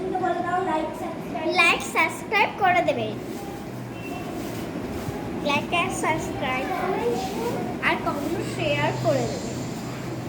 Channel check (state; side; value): identical; both; correlation 1.00